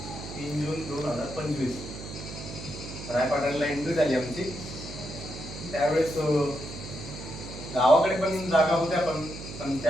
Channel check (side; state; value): right; noise; hum, 10 dB below the sound